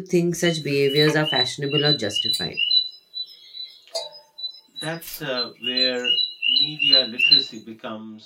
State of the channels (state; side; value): identical; both; correlation 1.00